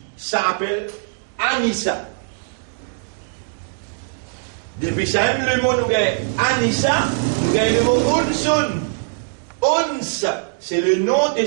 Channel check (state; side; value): silent; left; digital silence